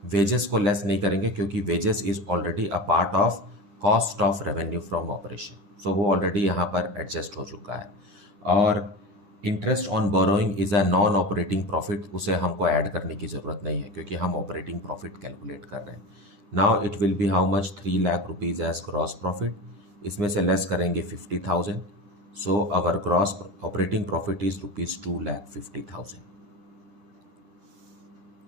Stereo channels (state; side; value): late; left; 10 ms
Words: वेजेस को लेस नहीं करेंगे क्योंकि wages is already a part of cost of revenue from operation, so वो ऑलरेडी यहाँ पर एडजस्ट हो चुका है। और interest on borrowing is a non operating profit, उसे हमको ऐड करने की ज़रूरत नहीं है क्योंकि हम ऑपरेटिंग प्रॉफिट कैलकुलेट कर रहे हैं। Now it will be how much? 3 lakh rupees as gross profit. इसमें से लेस करेंगे 50,000, so our gross operating profit is rupees 2,50,000।